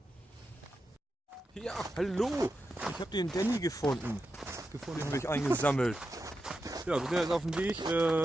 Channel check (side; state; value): both; normal; correlation 0.89